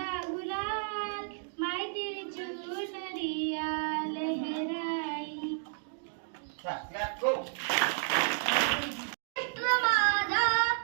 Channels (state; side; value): silent; left; digital silence